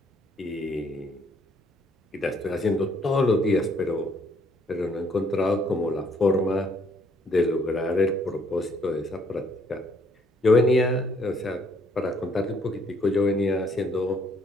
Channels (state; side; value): normal; both; correlation 0.66